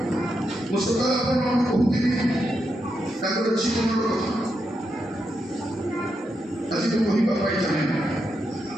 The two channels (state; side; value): normal; both; correlation 0.84